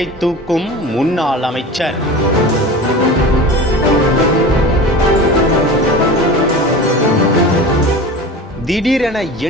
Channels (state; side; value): normal; both; correlation 0.34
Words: தூக்கும் முன்னாள் அமைச்சர். திடீரென